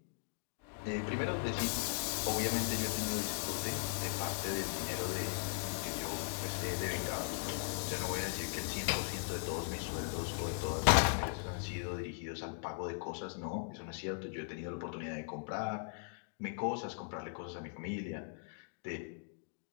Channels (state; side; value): silent; right; digital silence